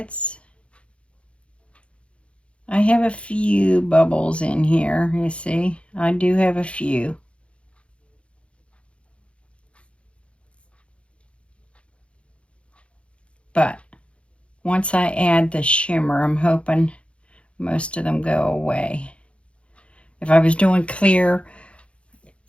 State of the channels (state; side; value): late; right; 0.060 ms